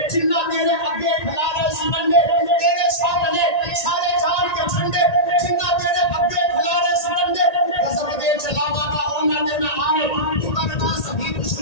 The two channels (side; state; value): right; late; 1.8 ms